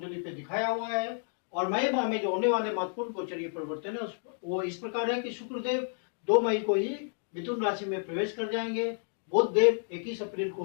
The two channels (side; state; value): right; silent; 57 dB below the other